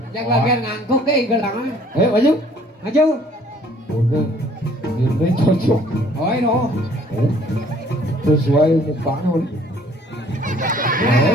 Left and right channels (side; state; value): both; normal; correlation 0.58